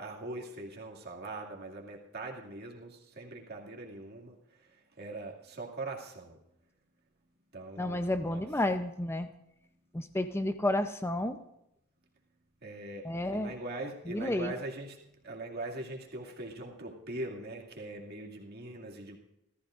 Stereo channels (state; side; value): normal; both; correlation 0.65